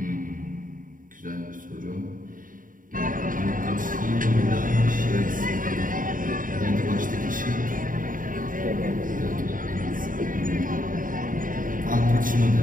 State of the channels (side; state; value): left; late; 0.39 ms